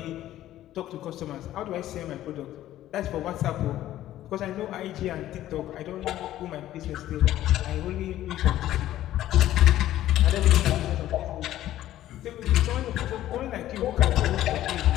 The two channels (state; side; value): quieter; right; 13.5 dB